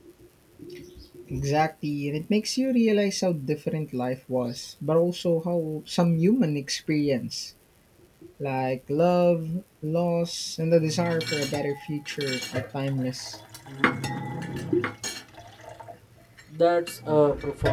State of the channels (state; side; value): identical; both; correlation 1.00